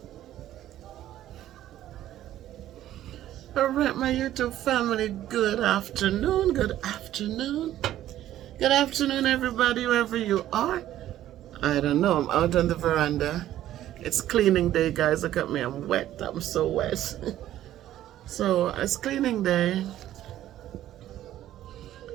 All right, my YouTube family, good afternoon. Good afternoon. Good afternoon, everybody, wherever you are. I don't know, I'm out on the veranda. It's cleaning day, guys. Look at me, I'm wet. I'm so wet. So, it's cleaning day.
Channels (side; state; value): left; quieter; 12.9 dB